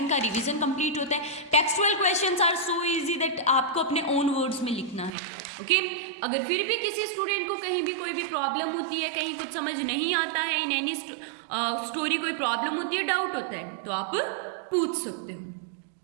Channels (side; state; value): left; drops out; at 5.2 s